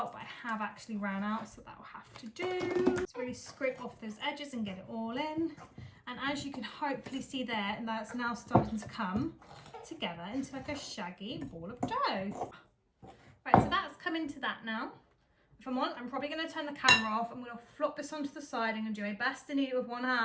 but I have actually ran out, so that will have to do. Just really scrape off those edges and get it all in. And as you can hopefully see there, and that's now starting to come together into like a shaggy ball of dough. Right, so that's come into that now. If I'm on, I'm probably going to turn the camera off. I'm going to flop this onto the side. I'm going to do my best to knead it with one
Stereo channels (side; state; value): both; identical; correlation 1.00